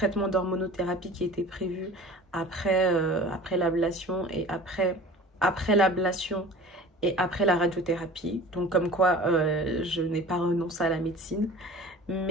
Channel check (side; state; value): both; normal; correlation 0.42